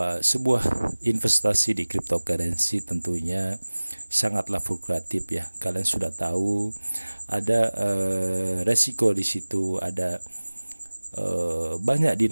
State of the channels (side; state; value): both; inverted; correlation -1.00